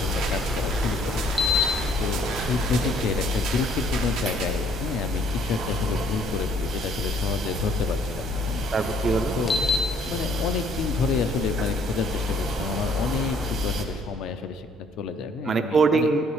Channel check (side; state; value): both; normal; correlation 0.62